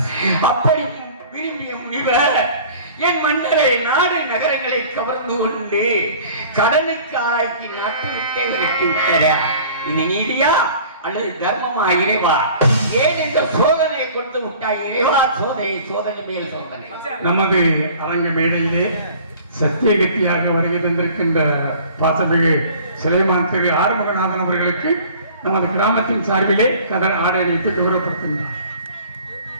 அப்படி விரும்பிய முனிவர் என் மன்னரை நாடு நகரங்களை கவர்ந்து கொண்டு கடனுக்கு ஆக்கி நாட்டு விட்டே விரட்டி விட்டாரா? இது நீதியா அல்லது தர்மமா இறைவா? ஏன் இந்த சோதனை கொடுத்து விட்டாய் இறைவா? சோதனை சோதனை மேல் சோதனை. நமது அரங்க மேடையிலே சத்தியகத்தியாக வருகை தந்திருக்கின்ற பாசமிகு சிலைமான் திரு ஆறுமுகநாதன் அவர்களுக்கு நமது கிராமத்தின் சார்பிலே கதர் ஆடை அணிவித்து கௌரவப்படுத்துகிறார்.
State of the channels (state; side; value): inverted; both; correlation -0.48